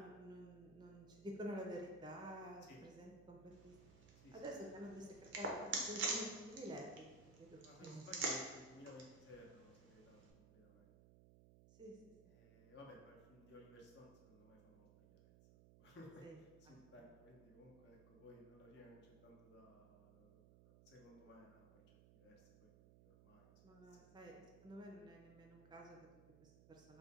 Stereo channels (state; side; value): noise; right; hum, 17 dB below the sound